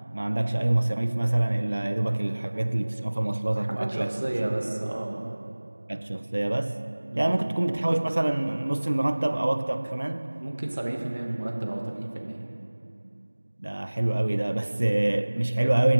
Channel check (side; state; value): both; inverted; correlation -1.00